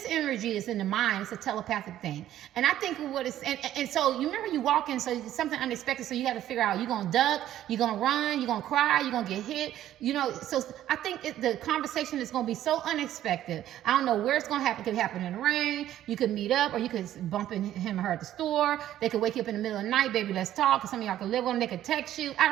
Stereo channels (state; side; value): quieter; left; 12.4 dB